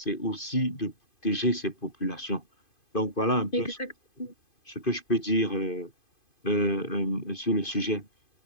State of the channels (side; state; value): right; late; 2.5 ms